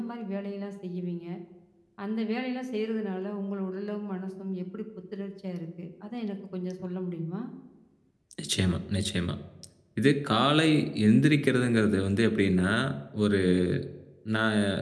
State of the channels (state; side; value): identical; both; correlation 1.00